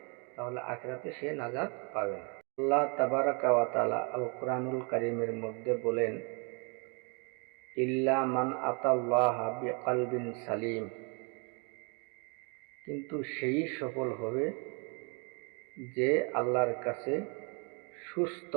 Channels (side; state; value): left; quieter; 35.2 dB